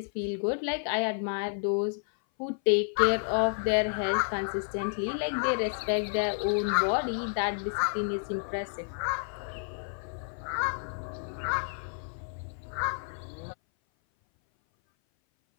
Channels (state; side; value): silent; right; 57 dB below the other